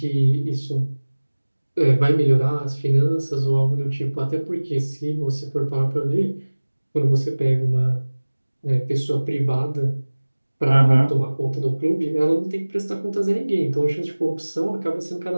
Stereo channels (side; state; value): both; inverted; correlation -1.00